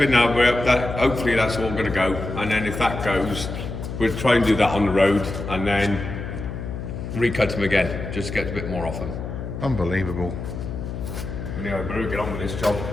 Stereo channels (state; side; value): noise; left; hum, 7 dB below the sound